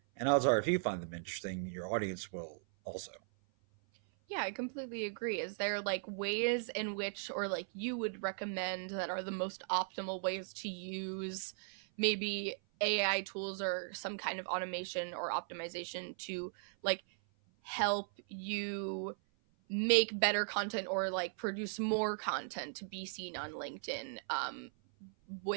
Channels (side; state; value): left; silent; 53 dB below the other